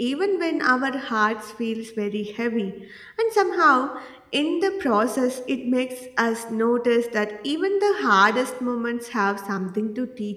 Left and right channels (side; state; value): both; identical; correlation 1.00